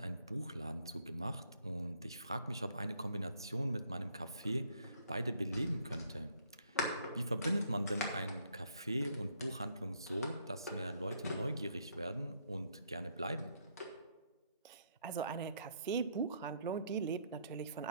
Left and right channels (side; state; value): both; inverted; correlation -0.69